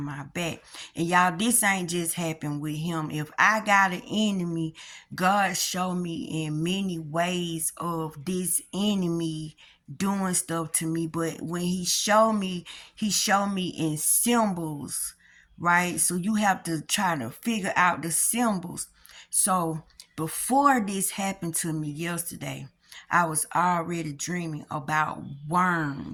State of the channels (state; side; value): identical; both; correlation 1.00